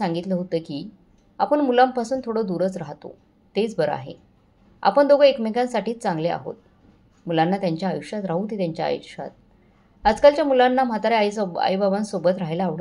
होतं की आपण मुलांपासून थोडं दूरच राहतो, तेच बरं आहे. आपण दोघं एकमेकांसाठीच चांगले आहोत. मुलांना त्यांच्या आयुष्यात राहू दे, त्यांच्या आयुष्यात. आजकालच्या मुलांना म्हाताऱ्या आईबाबांसोबत राहायला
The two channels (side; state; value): both; identical; correlation 1.00